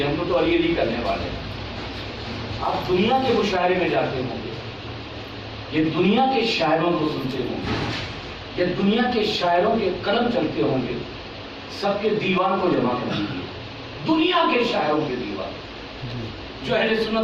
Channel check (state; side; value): identical; both; correlation 1.00